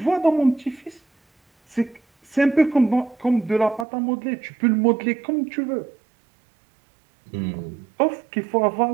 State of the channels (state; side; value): drops out; left; at 3.9 s